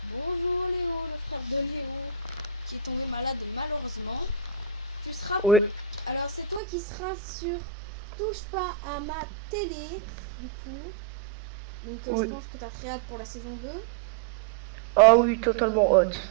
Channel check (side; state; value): left; drops out; at 6.6 s